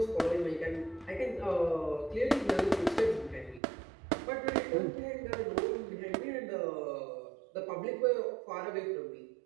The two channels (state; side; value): drops out; left; at 3.6 s